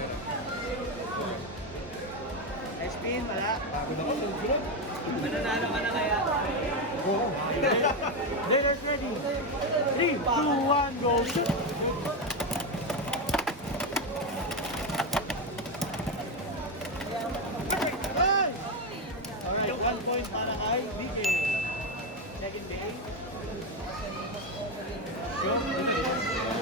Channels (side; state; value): both; normal; correlation 0.10